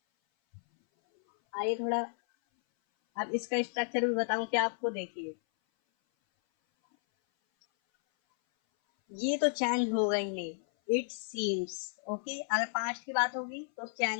आइए थोड़ा अब इसका स्ट्रक्चर भी बताऊं क्या आपको। देखिए ये तो चेंज होगा ही नहीं। इट सीम्स, ओके, अगर पास्ट की बात होगी तो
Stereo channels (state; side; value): silent; right; 56 dB below the other